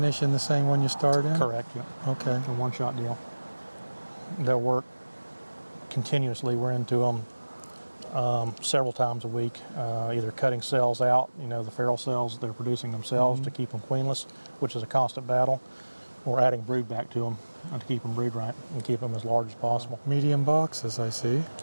in the same one you start in? Correct, yeah. Okay. A one-shot deal. They'll work continuously. We're into them several times a week, either cutting cells out, the feral cells they're producing themselves to keep them queenless, which is a constant battle, or adding brood back to them to keep them brood right and keep them as large as possible. Medium boxes, I see.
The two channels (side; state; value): both; inverted; correlation -1.00